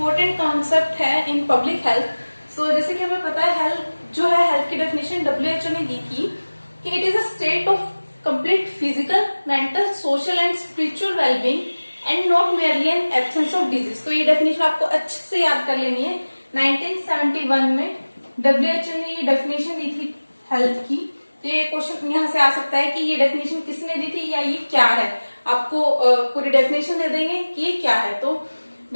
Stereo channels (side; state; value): both; inverted; correlation -1.00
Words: कॉन्सेप्ट है इन पब्लिक हेल्थ। सो जैसे कि हमें पता है हेल्थ जो है, हेल्थ की डेफिनेशन WHO ने दी थी कि it is a state of complete physical, mental, social and spiritual wellbeing and not merely N absence of disease. तो ये डेफिनेशन आपको अच्छे से याद कर लेनी है। 1971 में WHO ने ये डेफिनेशन दी थी हेल्थ की। तो ये क्वेश्चन यहाँ से आ सकता है कि ये डेफिनेशन किसने दी थी या ये क्या है। आपको पूरी डेफिनेशन दे देंगे कि ये क्या है। तो